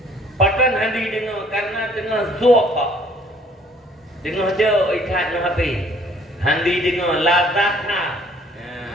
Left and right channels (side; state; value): both; normal; correlation 0.58